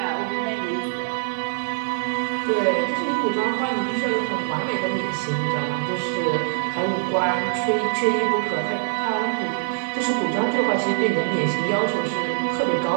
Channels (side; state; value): left; silent; digital silence